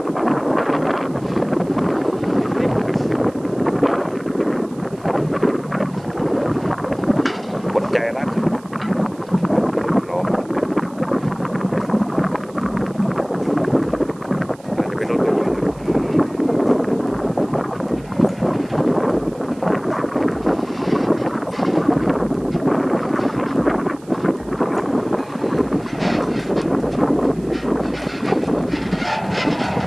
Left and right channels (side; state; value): right; noise; hiss, 26 dB below the sound